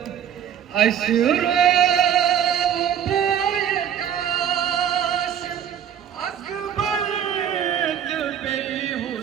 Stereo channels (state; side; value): quieter; left; 9.2 dB